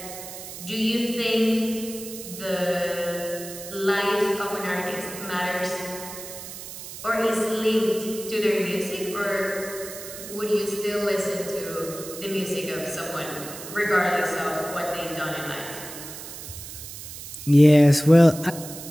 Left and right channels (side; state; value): right; noise; hiss, 11 dB below the sound